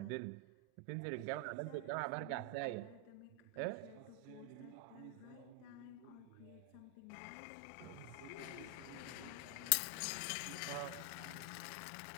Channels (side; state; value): both; different; correlation 0.00